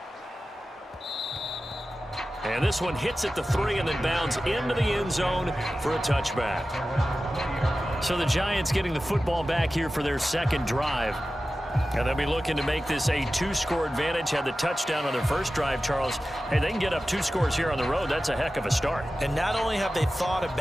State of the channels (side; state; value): both; normal; correlation 0.94